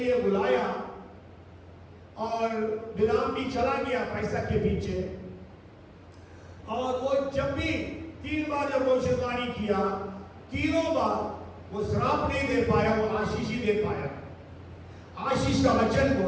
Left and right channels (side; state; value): both; identical; correlation 1.00